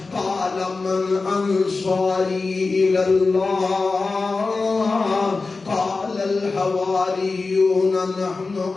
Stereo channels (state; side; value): quieter; right; 3.9 dB